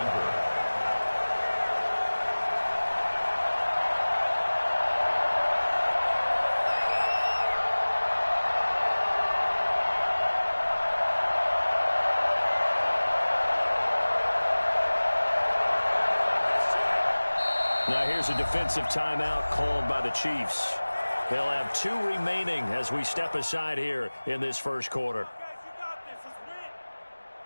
Now here's a defensive timeout called by the Chiefs. They'll have 2 remaining as we step aside here in this first quarter.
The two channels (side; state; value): both; inverted; correlation -1.00